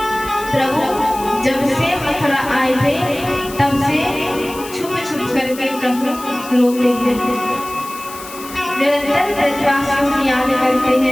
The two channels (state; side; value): noise; left; hiss, 15 dB below the sound